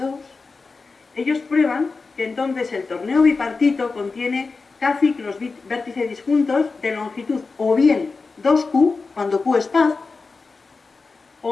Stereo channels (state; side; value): quieter; right; 4.2 dB